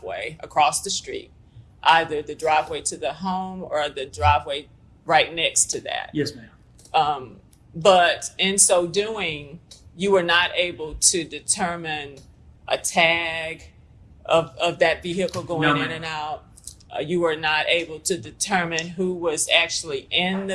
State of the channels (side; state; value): both; identical; correlation 1.00